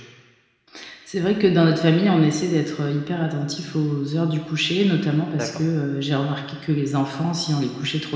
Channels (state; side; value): identical; both; correlation 1.00